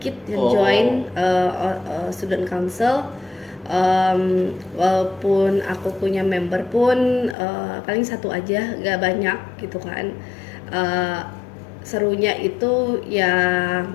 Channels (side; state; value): right; drops out; at 7.4 s